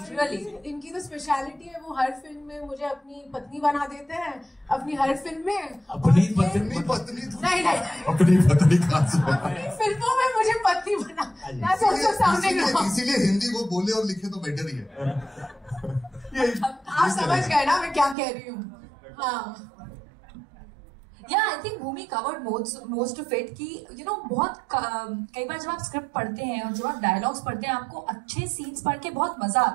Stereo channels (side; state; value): left; drops out; at 18.2 s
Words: Really. इनकी तो स्पेशलिटी है, वो हर फिल्म में मुझे अपनी पत्नी बना देते हैं, अपनी हर फिल्म में. अपनी पत्नी नहीं अपनी पत्नी कहाँ से? अपनी फिल्मों में मुझे पत्नी बना. That's also sounding wrong. इसीलिए हिंदी को बोले और लिखे तो बेटर ही है. आप समझ गए ना मैं क्या कह रही हूँ. हाँ. Yeah, I think Bhumi covered most of it कि बहुत कई बार जब आप स्क्रिप्ट पढ़ते हैं और जब आप डायलॉग्स पढ़ते हैं, आपको अच्छे सीन्स पढ़ के बहुत मजा